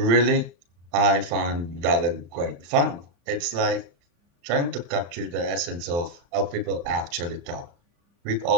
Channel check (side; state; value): left; late; 35 ms